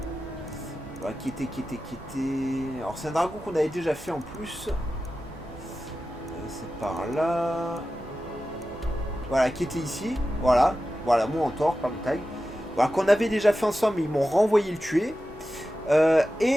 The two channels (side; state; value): both; normal; correlation 0.93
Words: Voilà, qui était... Alors c'est un dragon qu'on avait déjà fait en plus. C'est par là. Voilà, qui était ici. Voilà, mon mentor, pas mon tag. Voilà, qu'on avait déjà fait ensemble, mais ils m'ont renvoyé le tuer.